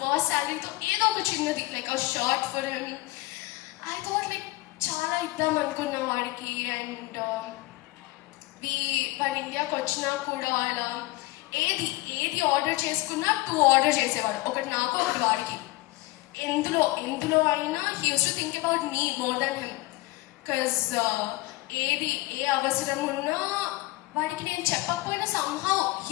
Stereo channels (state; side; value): quieter; right; 20.4 dB